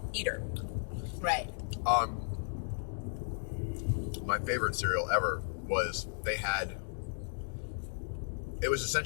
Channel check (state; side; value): silent; right; digital silence